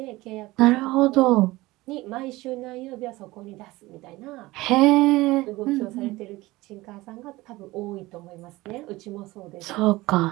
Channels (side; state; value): left; quieter; 19.7 dB